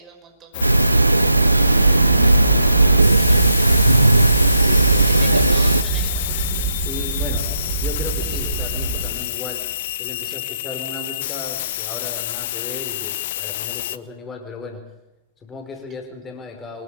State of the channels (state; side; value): inverted; both; correlation -0.78